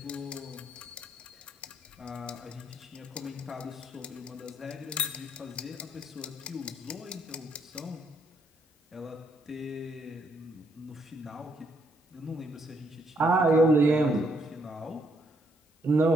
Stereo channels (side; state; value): both; normal; correlation 0.72